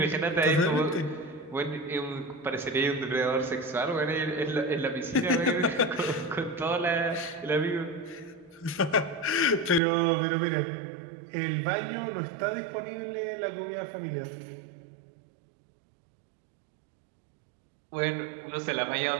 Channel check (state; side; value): drops out; left; at 9.8 s